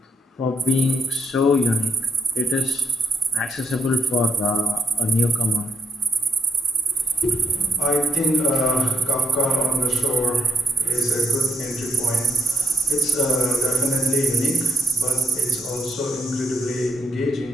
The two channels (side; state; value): both; normal; correlation 0.78